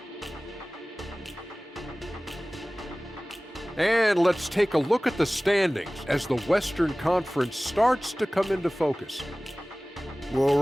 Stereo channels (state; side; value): normal; both; correlation 0.98